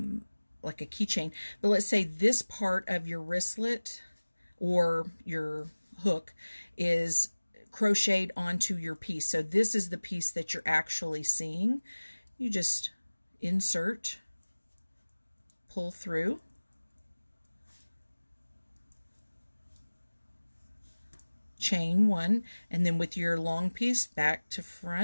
like a keychain. But let's say this part of your wristlet or your hook is crocheted onto your piece. So this is the piece that you're actually seeing. You just insert, pull through, chain one, and then with your long piece back to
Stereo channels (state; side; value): inverted; both; correlation -1.00